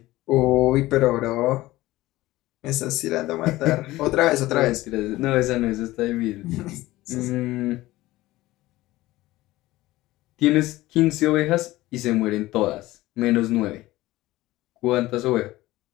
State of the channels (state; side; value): quieter; right; 17.6 dB